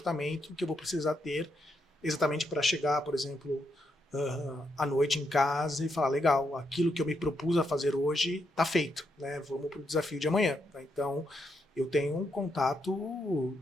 que eu vou precisar ter exatamente para chegar, por exemplo, à noite em casa e falar, legal, aquilo que eu me propus a fazer hoje está feito, né? Vamos para o desafio de amanhã. Então, eu tenho um contato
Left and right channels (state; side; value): normal; both; correlation 0.80